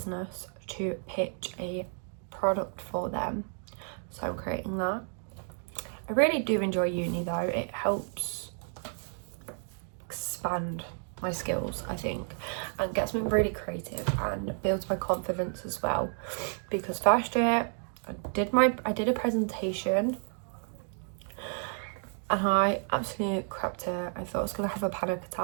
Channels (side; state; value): left; silent; 56 dB below the other